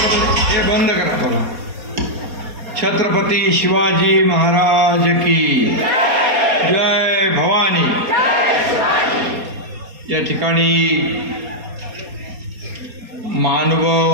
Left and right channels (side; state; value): left; late; 4.2 ms